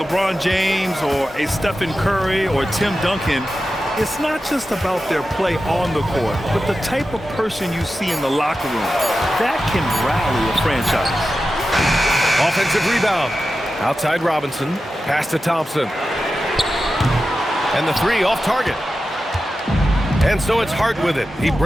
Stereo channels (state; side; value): normal; both; correlation 0.92